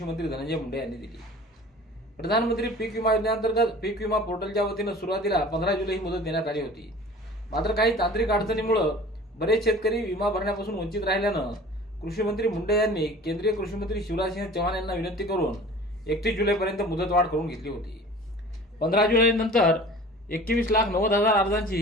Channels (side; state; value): both; normal; correlation 0.43